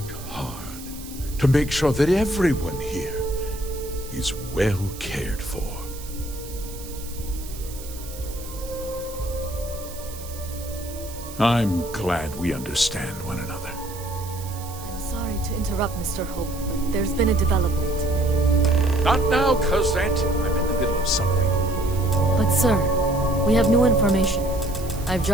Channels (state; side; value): noise; right; hiss, 15 dB below the sound